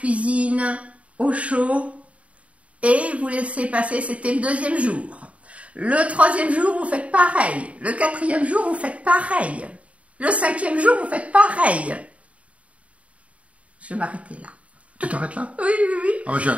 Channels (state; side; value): late; left; 0.065 ms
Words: au chaud, et vous laissez passer, c'était le deuxième jour. Le 3e jour, vous faites pareil. Le 4e jour, vous faites pareil. Le 5e jour, vous faites pareil. Je vais m'arrêter là. Tu t'arrêtes là? Oui, oui, oui. Ah, j'ai